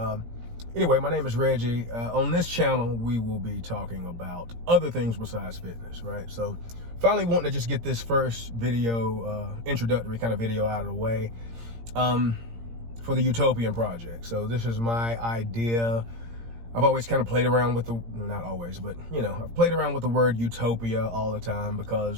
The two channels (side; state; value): left; late; 17 ms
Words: anyway, my name is Reggie. On this channel, we will be talking about other things besides fitness, right? So finally wanting to just get this first video, introductory kind of video out of the way for the You-Topian project. So this is my idea. I've always kind of played around with the, not always, but, you know, I've played around with the word utopia all the time